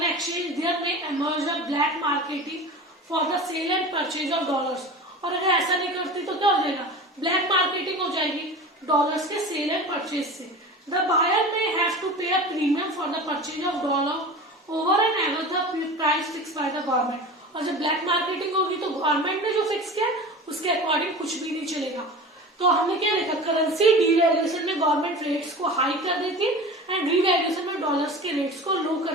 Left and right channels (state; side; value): normal; both; correlation 0.34